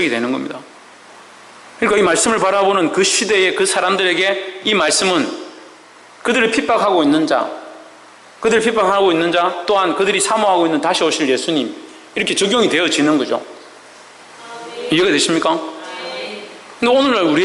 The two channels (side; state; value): both; identical; correlation 1.00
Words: 되는 겁니다. 그러니까 이 말씀을 바라보는 그 시대의 그 사람들에게 이 말씀은 그들을 핍박하고 있는 자, 또한 그들이 사모하고 있는 다시 오실 예수님, 이렇게 적용이 되어지는 거죠. 이해가 되십니까? 근데 오늘날